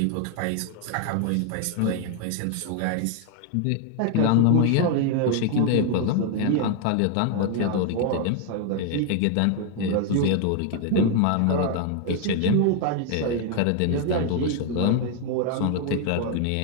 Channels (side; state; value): both; different; correlation 0.01